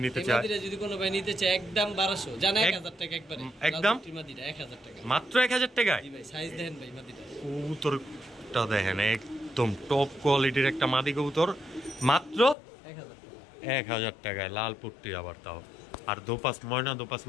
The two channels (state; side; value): drops out; right; at 12.6 s